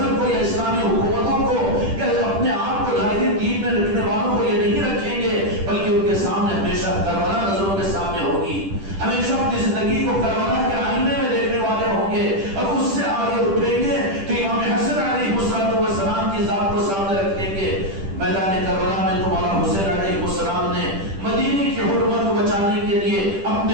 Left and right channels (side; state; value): left; late; 10 ms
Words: کو یا اسلامی حکومتوں کو یا اپنے آپ کو ظاہری دین میں رکھنے والوں کو یہ نہیں رکھیں گے، بلکہ ان کے سامنے ہمیشہ کربلا نظروں کے سامنے ہوگی، ہمیشہ اپنی زندگی کو کربلا کے آئینے میں دیکھنے والے ہوں گے اور اس سے آگے اٹھیں گے تو امام حسن علیہ السلام کی ذات کو سامنے رکھیں گے۔ میدان کربلا میں تو مولا حسین علیہ السلام نے مدینے کی حرمت کو بچانے کے لیے اپنے